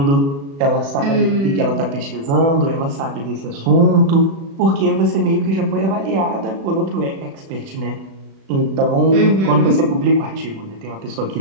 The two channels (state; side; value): late; left; 36 ms